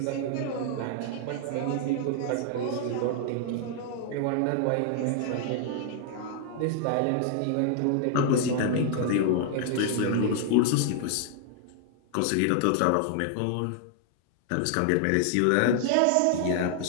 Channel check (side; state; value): both; different; correlation 0.00